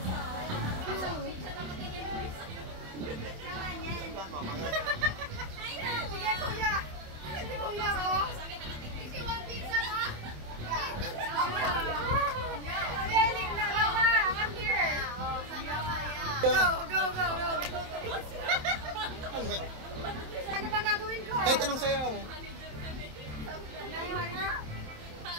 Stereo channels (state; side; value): late; left; 27 ms